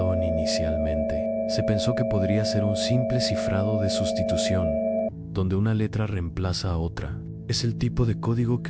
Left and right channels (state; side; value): identical; both; correlation 1.00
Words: inicialmente. Se pensó que podría ser un simple cifrado de sustitución, donde una letra reemplaza a otra. Es el tipo de código